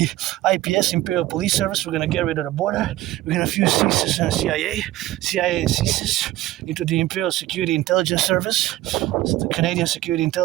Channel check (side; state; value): left; quieter; 15.8 dB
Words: IPS, Imperial Police Service. We're going to get rid of the border. We're going to fuse CSIS and CIA and CSIS into the Imperial Security Intelligence Service, so the Canadian Security